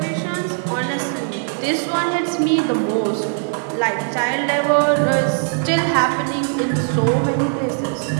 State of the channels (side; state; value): left; silent; 56 dB below the other